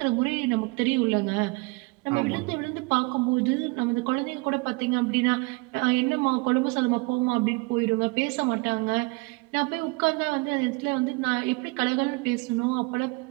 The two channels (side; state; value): left; quieter; 27.4 dB